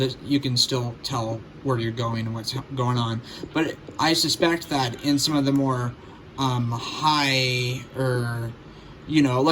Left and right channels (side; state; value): both; identical; correlation 1.00